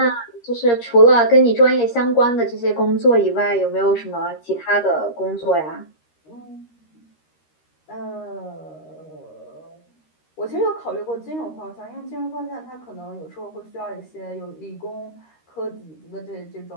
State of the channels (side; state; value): right; late; 13 ms